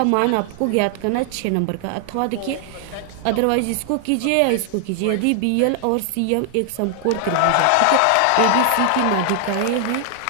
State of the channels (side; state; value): both; different; correlation 0.00